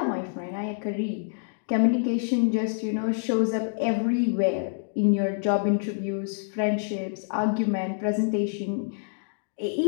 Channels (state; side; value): silent; right; digital silence